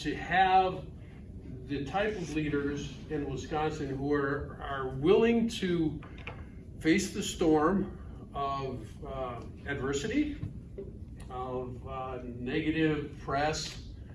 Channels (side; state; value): both; identical; correlation 1.00